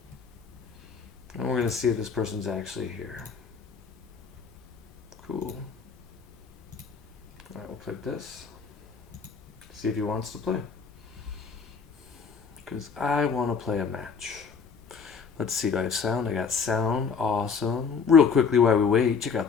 And we're going to see if this person's actually here. Cool. Alright, we'll click this. See if he wants to play. Because I want to play a match. Let's see, do I have sound? I got sound. Awesome. Real quickly while we wait, check out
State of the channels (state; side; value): quieter; right; 5.8 dB